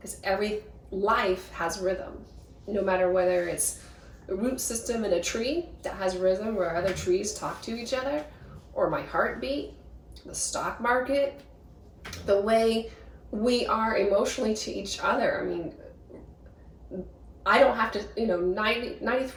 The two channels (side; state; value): both; identical; correlation 1.00